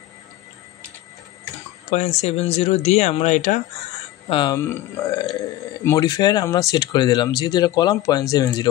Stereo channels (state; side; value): quieter; right; 14.8 dB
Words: 0.70 দিয়ে আমরা এটা মডিফায়ার আমরা সেট করে দিলাম, যেহেতু এটা কলাম